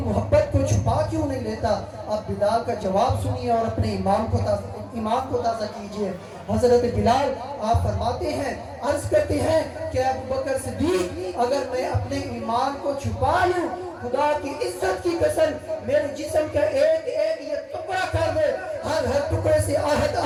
کو چھپا کیوں نہیں لیتا؟ اب بلال کا جواب سنیے اور اپنے ایمان کو تازہ کیجئے۔ حضرت بلال آپ فرماتے ہیں، عرض کرتے ہیں کہ ابو بکر صدیق اگر میں اپنے ایمان کو چھپا لوں، خدا کی عزت کی قسم میرے جسم کا ایک ایک یہ ٹکڑا کر دے، ہر ٹکڑے سے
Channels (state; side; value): identical; both; correlation 1.00